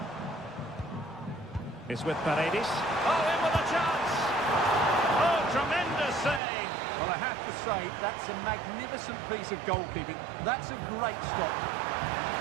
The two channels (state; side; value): drops out; left; at 6.4 s